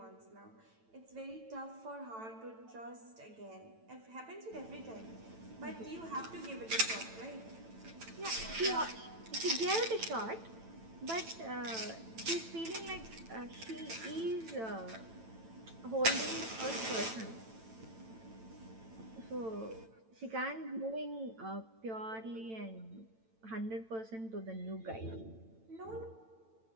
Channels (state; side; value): late; left; 9.0 ms